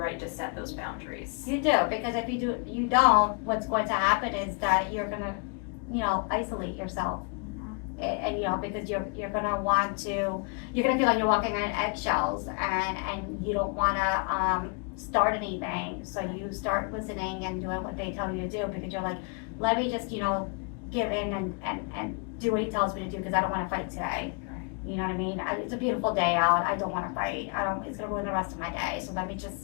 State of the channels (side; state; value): right; quieter; 36.8 dB